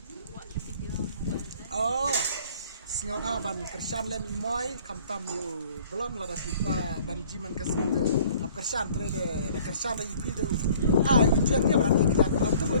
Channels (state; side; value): inverted; both; correlation -0.53